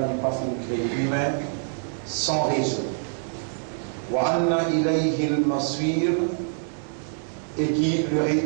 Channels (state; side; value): silent; left; digital silence